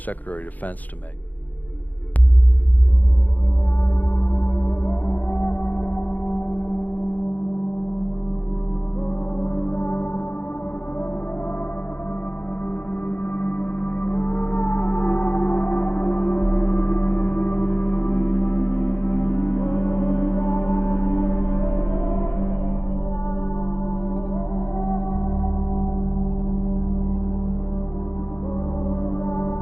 of Defense to make.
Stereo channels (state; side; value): late; right; 0.081 ms